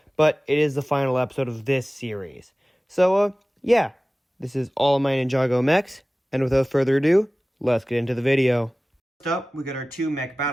but it is the final episode of this series. So, yeah, this is all of my Ninjago mechs, and without further ado, let's get into the video. First up, we got our two mech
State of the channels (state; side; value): normal; both; correlation 0.97